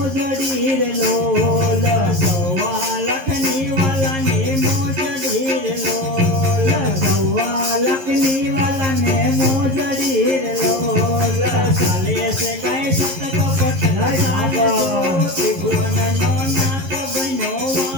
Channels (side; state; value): left; late; 11 ms